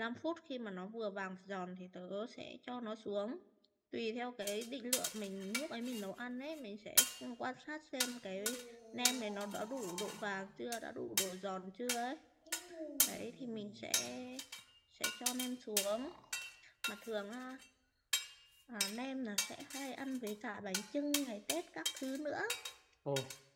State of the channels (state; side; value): identical; both; correlation 1.00